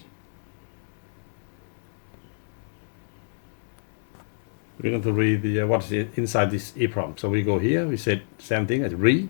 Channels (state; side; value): silent; right; digital silence